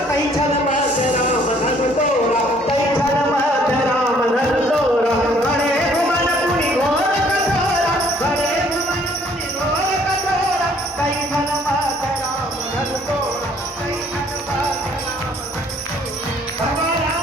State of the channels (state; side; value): normal; both; correlation 0.61